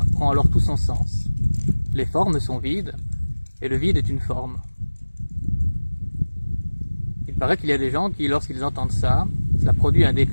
prend alors tout son sens. Les formes sont vides, et le vide est une forme. Il paraît qu'il y a des gens qui, lorsqu'ils entendent ça, cela produit un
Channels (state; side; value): inverted; both; correlation -1.00